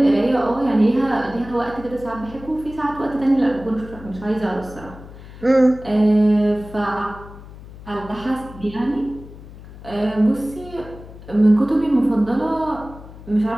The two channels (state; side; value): noise; left; hum, 17 dB below the sound